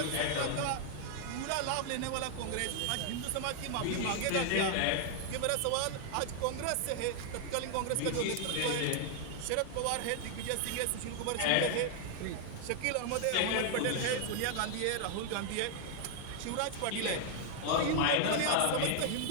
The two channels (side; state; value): both; different; correlation 0.00